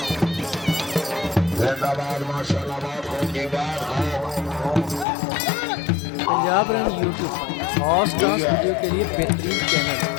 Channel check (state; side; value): drops out; right; at 5.1 s